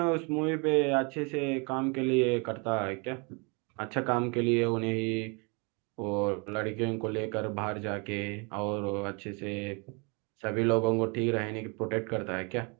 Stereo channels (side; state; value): left; quieter; 31.9 dB